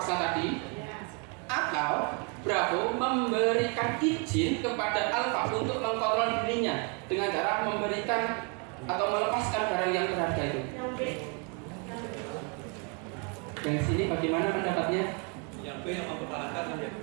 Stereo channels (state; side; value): quieter; left; 34.9 dB